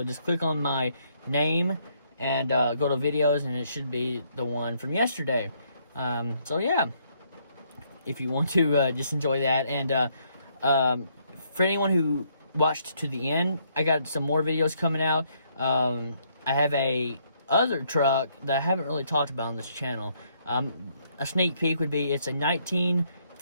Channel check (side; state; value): both; inverted; correlation -0.71